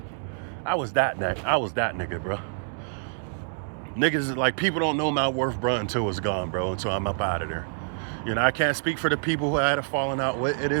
I was that nigga, bro. Niggas, like, people don't know my worth, bro, until it's gone, bro, until I'm up out of there. I can't speak for the people who I had a falling out with. It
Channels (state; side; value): silent; left; digital silence